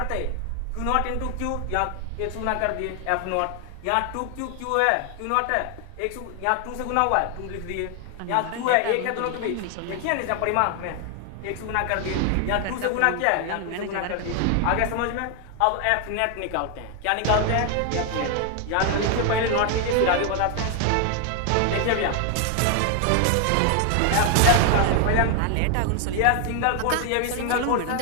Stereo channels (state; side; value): different; both; correlation 0.00